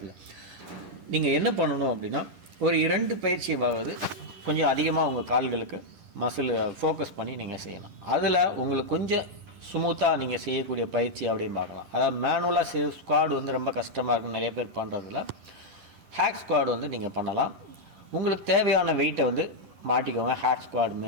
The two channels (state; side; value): late; left; 9.9 ms